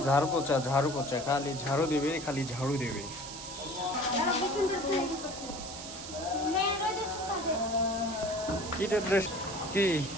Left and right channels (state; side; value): noise; right; hiss, 10 dB below the sound